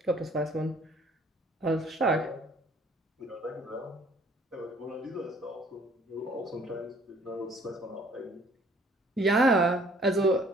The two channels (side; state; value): both; normal; correlation 0.58